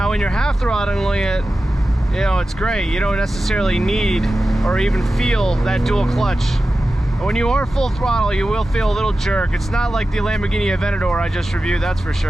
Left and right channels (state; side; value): normal; both; correlation 0.93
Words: when you're half throttling it, you know, it's great. You don't necessarily need or even feel that dual clutch. But when you are full throttle, you will feel a little jerk. It's not like the Lamborghini Aventador I just reviewed, that's for